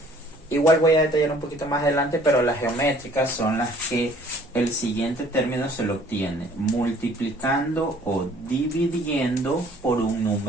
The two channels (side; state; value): both; normal; correlation 0.56